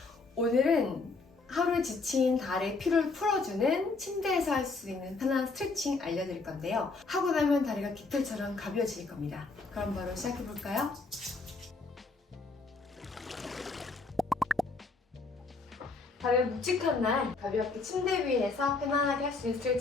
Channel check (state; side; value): quieter; right; 3.9 dB